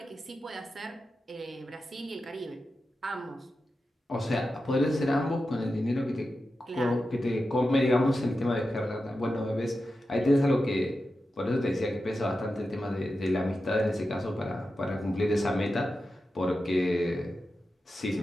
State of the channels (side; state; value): both; normal; correlation 0.91